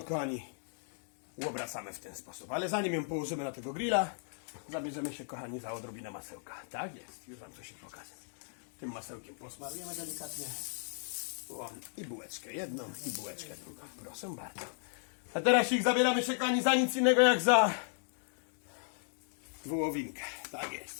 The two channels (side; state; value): right; silent; digital silence